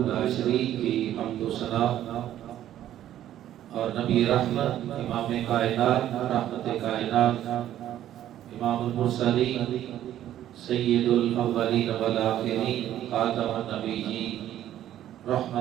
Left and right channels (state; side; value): quieter; left; 12.1 dB